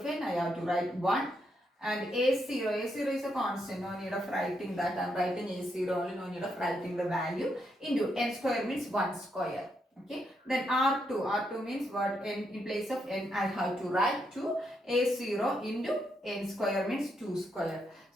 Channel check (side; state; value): both; normal; correlation 0.79